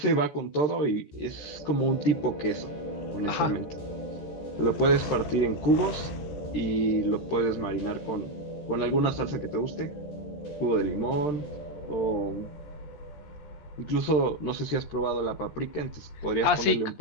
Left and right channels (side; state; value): right; late; 13 ms